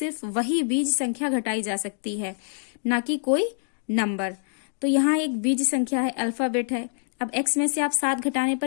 वही बीज संख्या घटाई जा सकती है, ना कि कोई नंबर। तो यहाँ एक बीज संख्या है, अल्फाबेट है। अब x में से आप 7 घटाने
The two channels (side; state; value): right; silent; digital silence